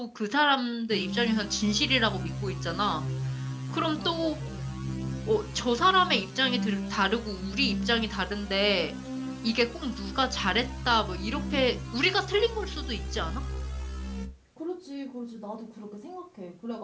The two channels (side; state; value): both; identical; correlation 1.00